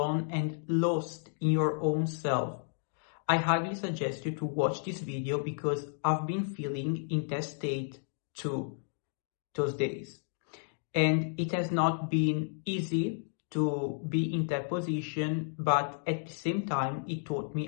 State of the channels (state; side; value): silent; right; digital silence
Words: and lost in your own self, I highly suggest you to watch this video because I've been feeling in that state too those days. And it has not been easy to be in that position, but at the same time, it taught